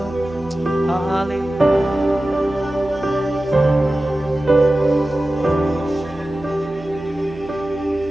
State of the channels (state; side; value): noise; right; hum, 20 dB below the sound